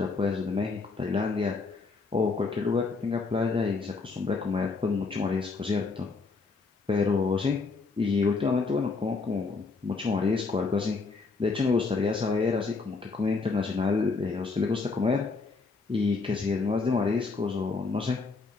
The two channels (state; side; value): quieter; right; 4.2 dB